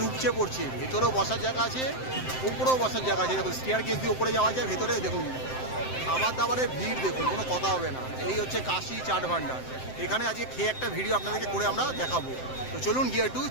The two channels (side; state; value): right; late; 7.7 ms